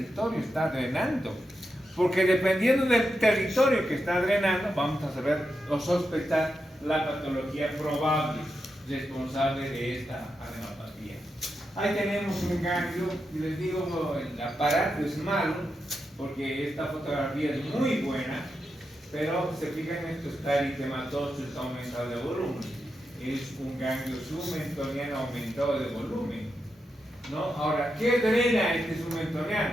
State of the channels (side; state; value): both; normal; correlation 0.87